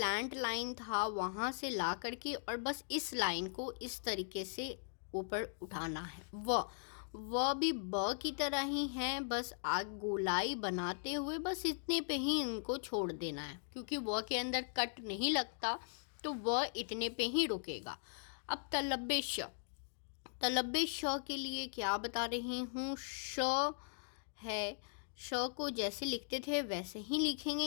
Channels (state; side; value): silent; right; digital silence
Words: लाइन था वहाँ से ला करके और बस इस लाइन को इस तरीके से ऊपर उठाना है। व भी ब की तरह ही है, बस आग गोलाई बनाते हुए बस इतने पे ही इनको छोड़ देना है, क्योंकि व के अंदर कट नहीं लगता तो व इतने पे ही रुकेगा। अब तलब्बे श के लिए क्या बता रही हूँ, श है, श को जैसे लिखते थे वैसे ही लिखेंगे,